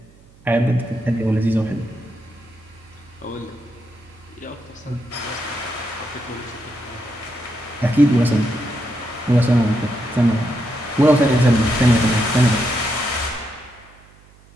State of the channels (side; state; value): right; noise; hum, 27 dB below the sound